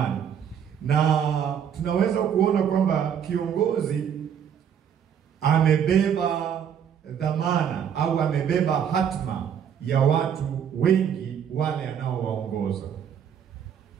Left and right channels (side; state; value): left; quieter; 8.4 dB